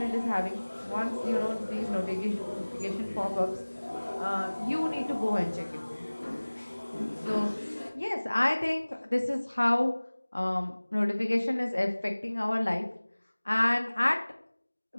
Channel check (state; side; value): inverted; both; correlation -1.00